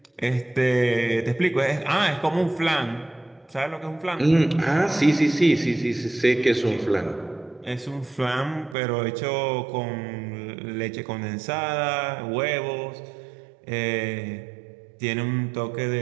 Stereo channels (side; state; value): left; drops out; at 8.8 s